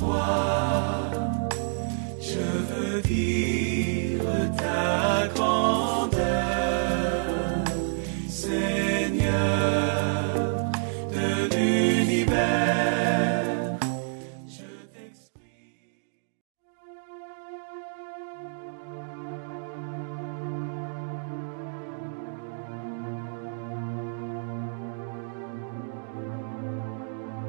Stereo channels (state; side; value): silent; left; digital silence